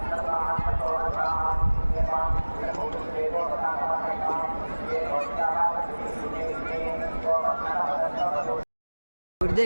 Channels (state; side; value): inverted; both; correlation -1.00